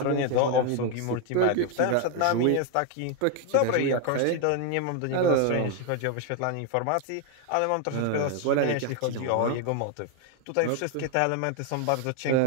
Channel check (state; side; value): different; both; correlation 0.01